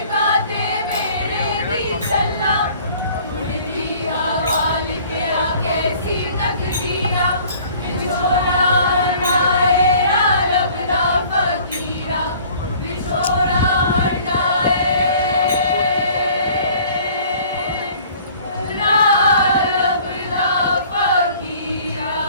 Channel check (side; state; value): both; inverted; correlation -0.52